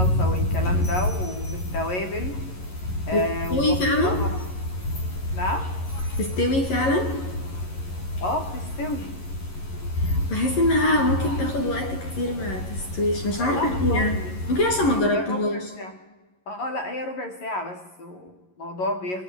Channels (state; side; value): late; right; 11 ms